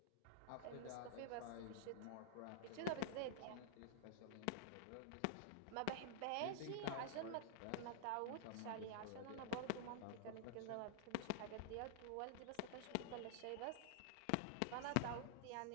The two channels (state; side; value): different; both; correlation -0.01